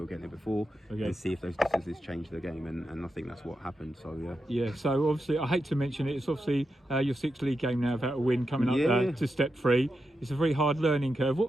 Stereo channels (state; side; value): normal; both; correlation 0.87